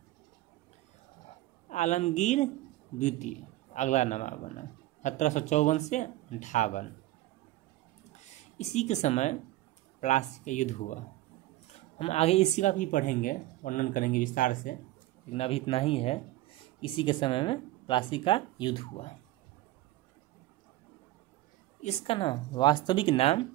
आलमगीर द्वितीय अगला नवाब बना 1754 से 58। इसी के समय प्लासी का युद्ध हुआ। हम आगे इसी का भी पढ़ेंगे, वर्णन करेंगे विस्तार से, लेकिन अभी इतना ही है। इसी के समय में प्लासी का युद्ध हुआ। इसका नाम, वास्तविक नाम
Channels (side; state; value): left; quieter; 16.3 dB